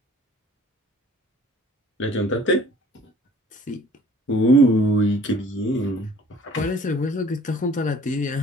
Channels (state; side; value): normal; both; correlation 0.53